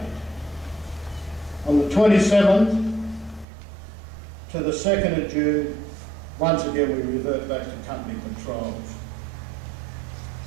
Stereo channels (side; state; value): left; drops out; at 3.5 s